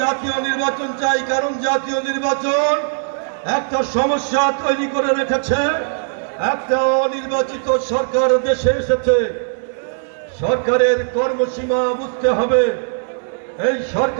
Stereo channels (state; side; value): silent; left; digital silence